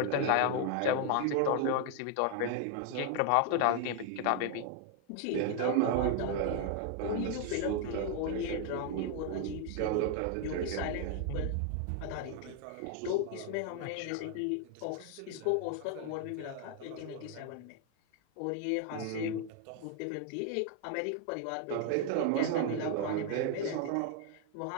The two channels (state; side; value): different; both; correlation 0.00